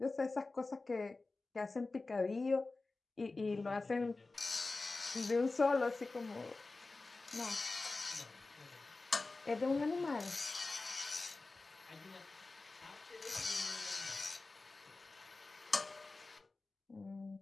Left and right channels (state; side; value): quieter; right; 3.5 dB